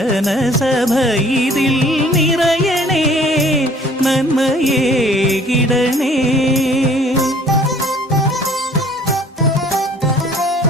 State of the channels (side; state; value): both; normal; correlation 0.54